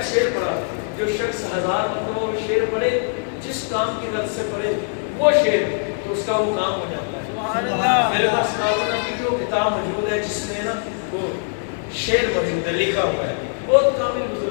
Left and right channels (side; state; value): right; silent; digital silence